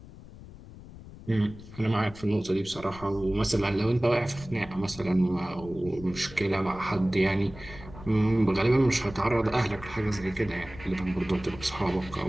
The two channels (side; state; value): left; noise; rumble, 17 dB below the sound